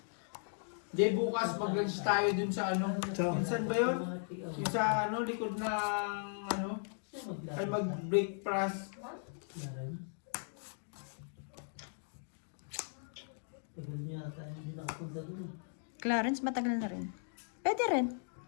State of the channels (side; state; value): right; silent; digital silence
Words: Di bukas mag-lunch tayo dun sa ano. Sa- Minsan ba yun? Yung sa ano, likod ng ano. Ay mag-breakfast. Clarence, matagal na rin. Pwede rin.